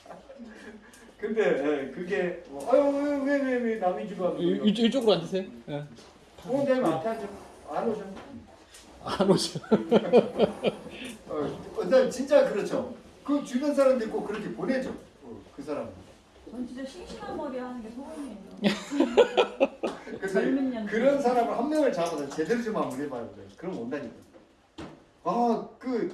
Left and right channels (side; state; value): both; identical; correlation 1.00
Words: 근데 그게 아유 왜 남의 집 와서 이쪽으로 앉으세요. 예. 원장님 앞에 앉아 안 오셔. 안 오셔. 원장님 진짜 그렇죠. 그 주변 사람들 꼭 그렇게 보내죠. 그 사람. 전 진짜 싱싱한 머리 하는 게 소원이에요. 그래서 젊은 년들. 그런 사람을 한 명을 잡아서 제대로 좀 한번 해봐요. 그럼 온다니까. 그